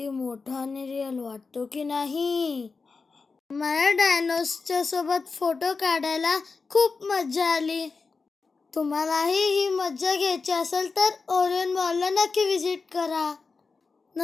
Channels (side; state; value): right; quieter; 4.5 dB